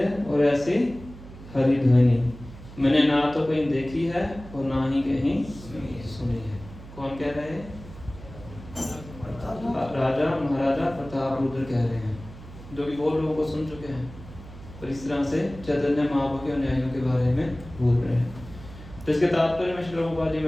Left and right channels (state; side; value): noise; right; hum, 16 dB below the sound